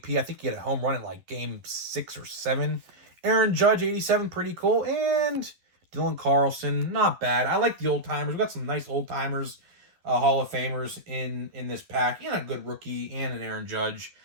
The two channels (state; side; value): late; left; 11 ms